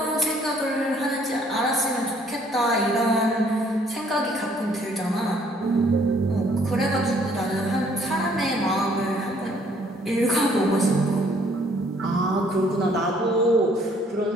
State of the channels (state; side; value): normal; both; correlation 0.63